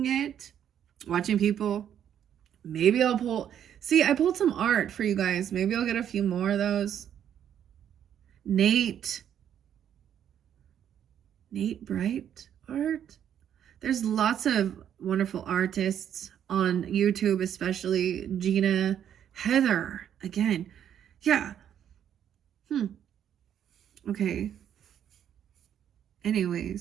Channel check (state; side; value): quieter; left; 9.6 dB